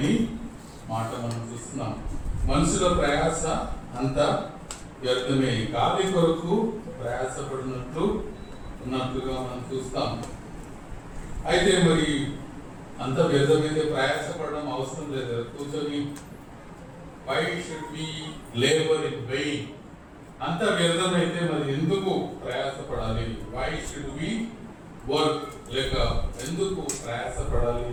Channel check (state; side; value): identical; both; correlation 1.00